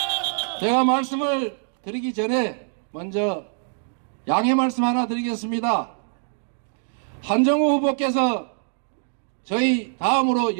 제가 말씀을 드리기 전에 먼저 양해 말씀 하나 드리겠습니다. 한정우 후보께서 저희 다음으로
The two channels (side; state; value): left; silent; digital silence